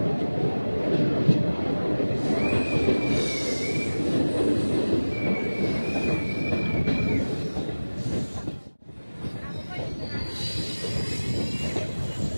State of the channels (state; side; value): inverted; both; correlation -1.00